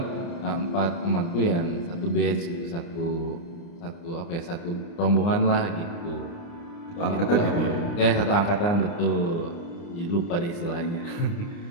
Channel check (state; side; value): late; right; 29 ms